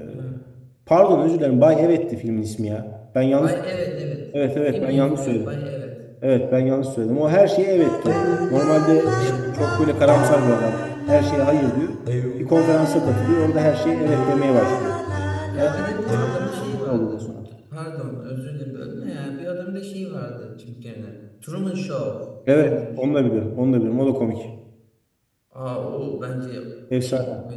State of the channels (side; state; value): both; identical; correlation 1.00